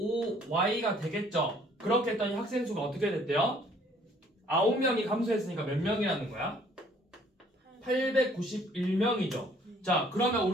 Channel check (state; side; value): normal; both; correlation 0.59